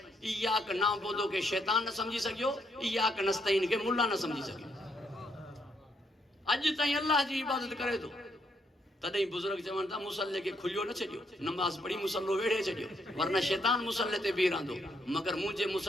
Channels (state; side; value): normal; both; correlation 0.75